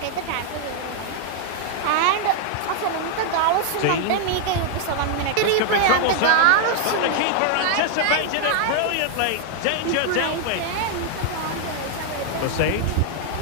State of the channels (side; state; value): both; different; correlation 0.00